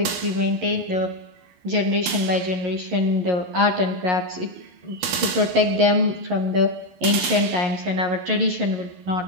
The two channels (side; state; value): left; late; 11 ms